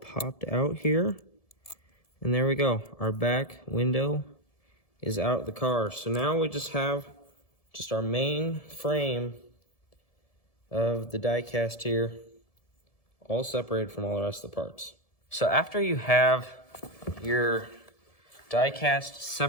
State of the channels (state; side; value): late; right; 1.7 ms